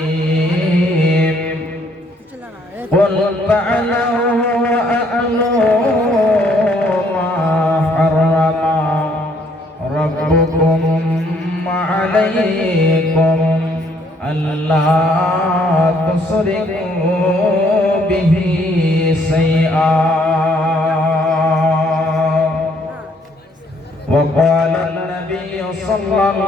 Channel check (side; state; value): both; normal; correlation 0.66